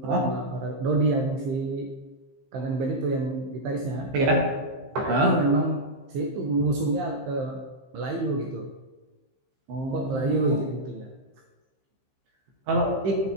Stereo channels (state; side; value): late; left; 15 ms